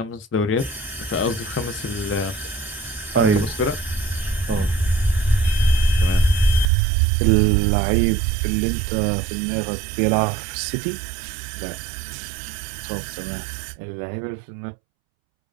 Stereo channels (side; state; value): left; drops out; at 6.7 s